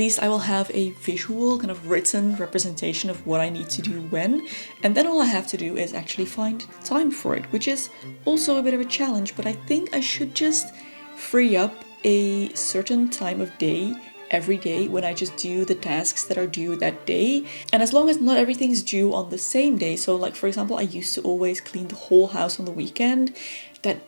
I will have a visual kind of written representation of what I need to do when, and then all I have to do is actually find time for it, which is also a bit of a challenge, but I think I should just free up a certain time of day every day when I just do the tasks that are due that day. And as long as not everything's due on the same day, so like for example, I used to always clean the whole house on the weekend,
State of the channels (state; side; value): inverted; both; correlation -1.00